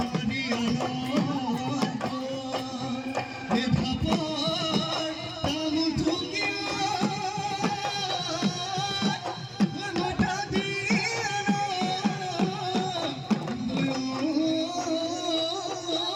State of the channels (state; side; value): identical; both; correlation 1.00